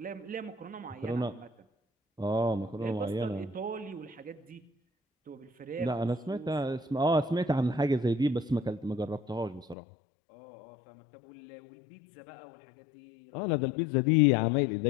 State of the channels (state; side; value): drops out; right; at 9.8 s